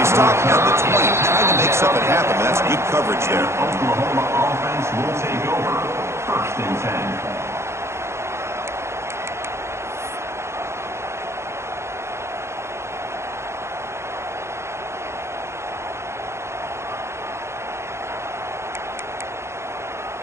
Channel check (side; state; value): left; late; 0.13 ms